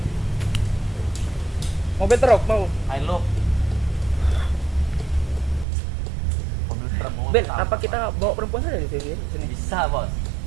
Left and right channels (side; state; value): left; drops out; at 5.7 s